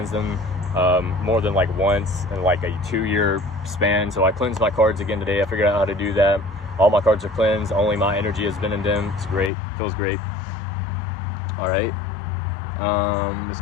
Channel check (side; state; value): right; drops out; at 9.5 s